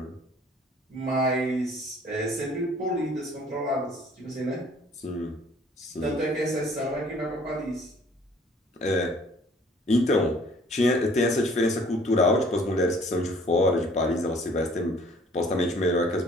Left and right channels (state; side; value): normal; both; correlation 0.56